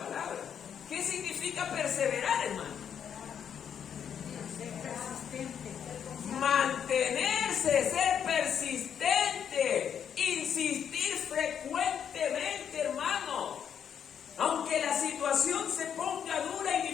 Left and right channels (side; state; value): right; quieter; 8.3 dB